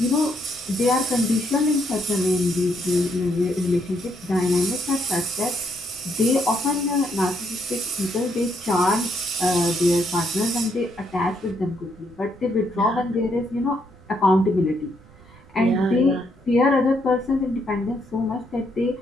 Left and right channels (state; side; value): noise; right; rumble, 25 dB below the sound